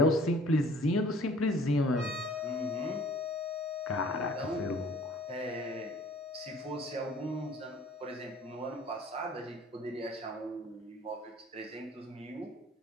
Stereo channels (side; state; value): both; normal; correlation 0.52